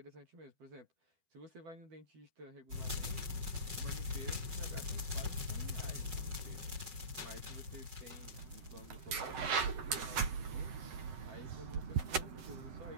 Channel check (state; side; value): late; left; 7.8 ms